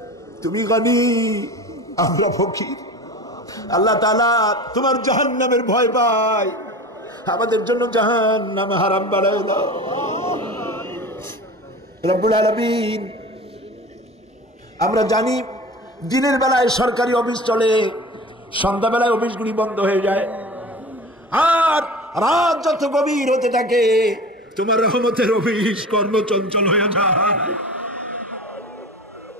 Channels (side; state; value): both; normal; correlation 0.35